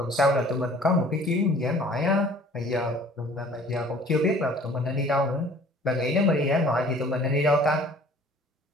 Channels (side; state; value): both; normal; correlation 0.51